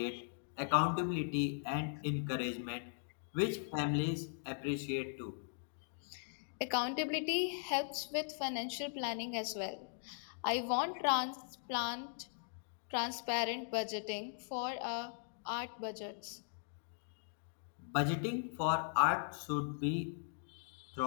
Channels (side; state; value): right; silent; digital silence